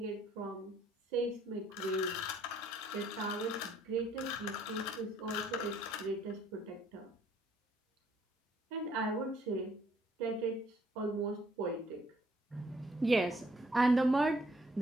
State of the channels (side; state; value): both; normal; correlation 0.65